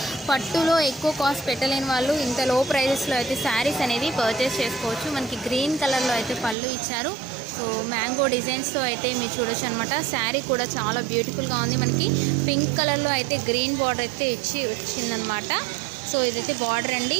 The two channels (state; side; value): drops out; left; at 6.6 s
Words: పట్టులో ఎక్కువ కాస్ట్ పెట్టలేని వాళ్ళు ఇంత లో ప్రైజెస్లో అయితే శారీస్ అనేది పర్చేస్ చేసుకోవచ్చు. మనకి గ్రీన్ కలర్లో అయితే పళ్ళు ఇచ్చారు. సో మ్యాంగో డిజైన్స్తో అయితే మీరు చూడొచ్చు అనమాట. శారీ కూడా చాలా బ్యూటిఫుల్గా ఉంది. మనకి పింక్ కలర్లో అయితే గ్రీన్ బార్డర్ అయితే వచ్చిందనమాట. సో ఇదైతే బార్డర్ అండి.